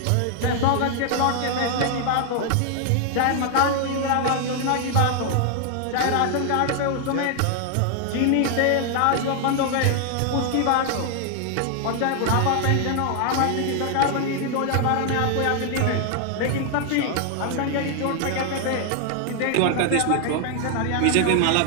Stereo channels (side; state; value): both; different; correlation 0.00